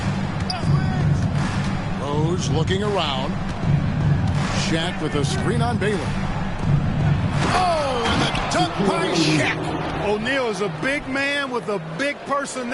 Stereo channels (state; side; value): identical; both; correlation 1.00